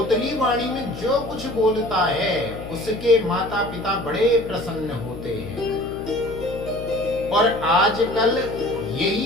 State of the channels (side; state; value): left; noise; hum, 11 dB below the sound